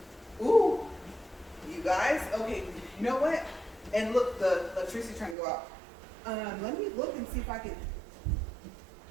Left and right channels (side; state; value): left; drops out; at 5.4 s